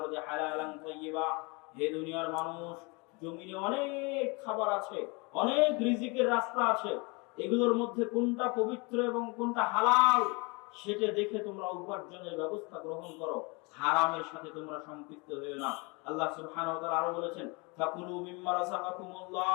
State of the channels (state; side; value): quieter; right; 29.0 dB